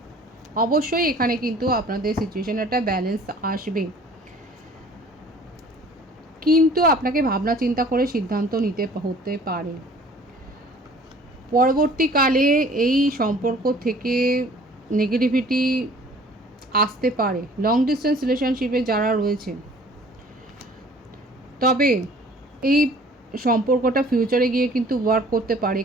অবশ্যই এখানে কিন্তু আপনাদের সিচুয়েশানে একটা ব্যালেন্স আসবে, কিন্তু আপনাকে ভাবনা চিন্তা করে সিদ্ধান্ত নিতে হতে পারে। পরবর্তীকালে এই সম্পর্ক থেকে নেগেটিভিটি আসতে পারে লং ডিস্টেন্স রিলেশনশিপে যারা রয়েছে, তবে এই সম্পর্কটা ফিউচারে গিয়ে কিন্তু ওয়ার্ক করতে পারে।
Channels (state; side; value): normal; both; correlation 0.51